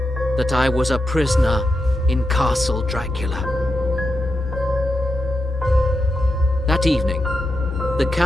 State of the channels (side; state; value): both; normal; correlation 0.87